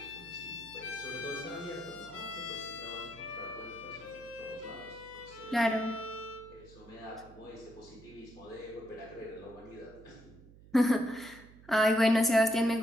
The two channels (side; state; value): right; noise; hum, 21 dB below the sound